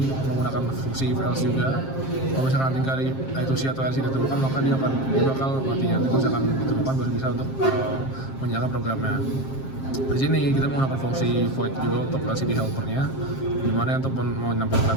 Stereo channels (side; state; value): right; late; 7.5 ms